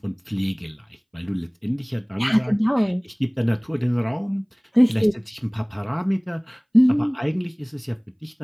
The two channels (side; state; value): both; identical; correlation 1.00